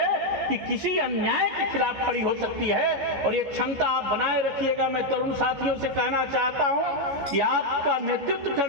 कि किसी अन्याय के खिलाफ खड़ी हो सकती है। और यह क्षमता आप बनाए रखिएगा। मैं तरुण साथियों से कहना चाहता हूं कि आपका नेतृत्व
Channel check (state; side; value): late; left; 14 ms